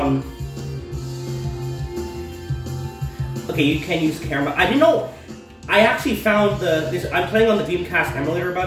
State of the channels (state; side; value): identical; both; correlation 1.00